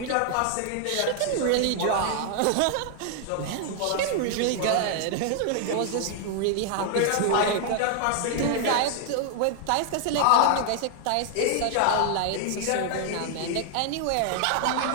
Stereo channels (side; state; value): both; different; correlation 0.00